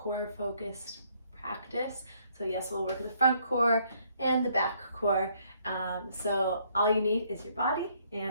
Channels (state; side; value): inverted; both; correlation -0.67